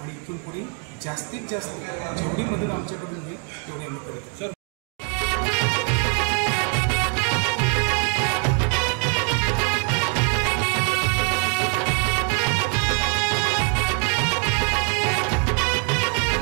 आणि इथून पुढे जास्तीत जास्त जेवढी मदत आमच्याकडून होईल तेवढी आम्ही करतो.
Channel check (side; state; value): left; quieter; 35.1 dB